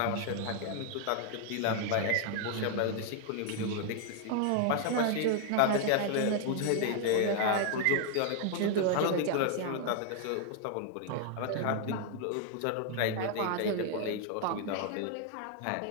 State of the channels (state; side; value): different; both; correlation 0.00